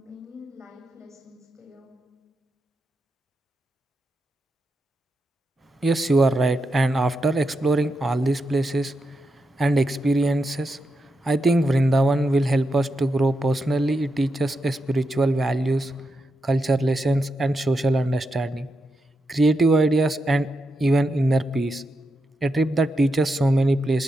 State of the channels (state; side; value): normal; both; correlation 0.86